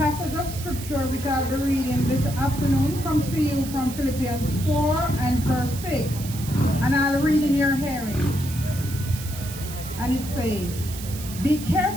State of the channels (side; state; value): right; noise; hiss, 12 dB below the sound